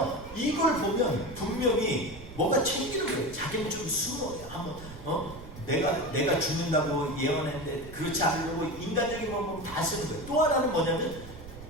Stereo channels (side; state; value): right; noise; rumble, 15 dB below the sound